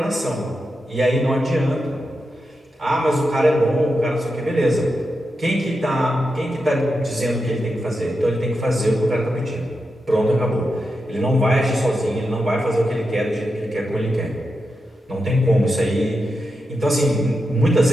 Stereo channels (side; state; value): both; normal; correlation 0.88